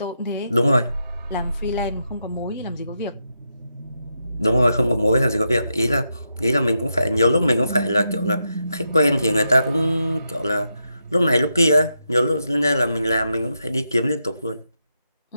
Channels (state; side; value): inverted; both; correlation -0.84